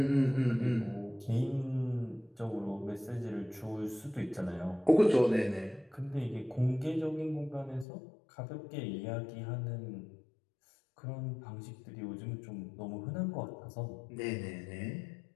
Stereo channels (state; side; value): drops out; right; at 7.9 s